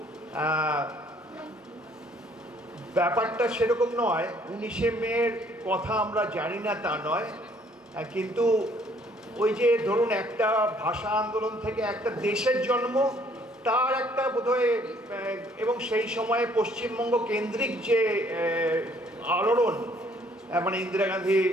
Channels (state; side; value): normal; both; correlation 0.62